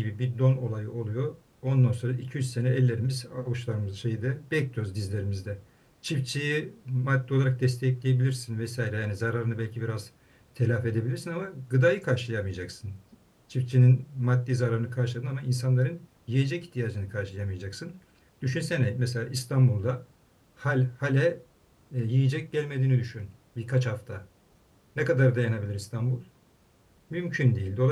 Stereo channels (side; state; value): both; identical; correlation 1.00